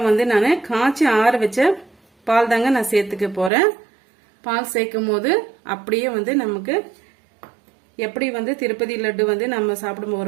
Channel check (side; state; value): left; drops out; at 3.5 s